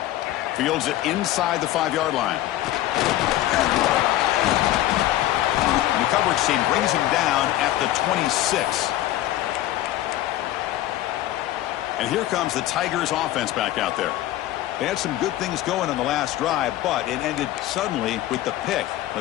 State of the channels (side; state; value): right; quieter; 14.4 dB